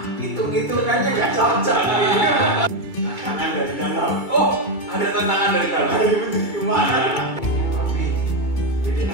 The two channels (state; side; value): late; right; 2.2 ms